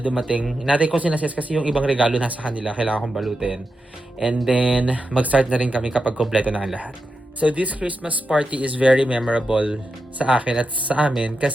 Inaantay ko sinases kasi yung ibang regalo nasa kanila. Kailangan kong balutin. And then, mag-start na rin kami kapag kompleto na ang lahat. So this Christmas party is very memorable sa akin at sa amin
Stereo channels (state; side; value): normal; both; correlation 0.88